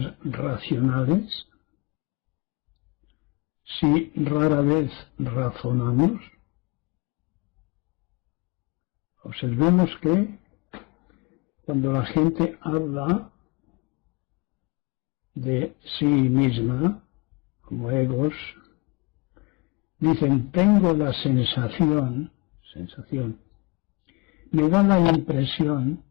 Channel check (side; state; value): right; quieter; 28.0 dB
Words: racionales? Si rara vez razonamos, observemos que cuando la gente habla de sí misma, como egos, dicen: tengo la sensación, me da la impresión,